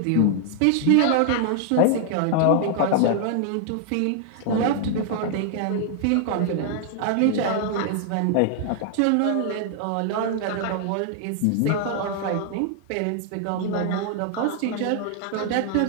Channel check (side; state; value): both; different; correlation 0.00